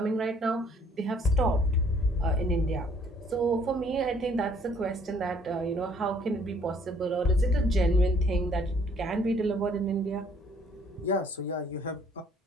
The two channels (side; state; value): both; normal; correlation 0.61